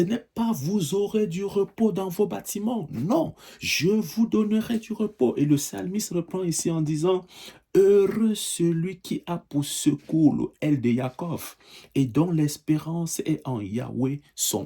n'est pas vous aurez du repos dans vos bâtiments. Non, je vous donnerai du repos. Et le psalmiste reprend ici en disant, heureux celui qui a pour secours le aile de Jacob et dont l'espérance est en Yahweh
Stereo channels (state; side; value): identical; both; correlation 1.00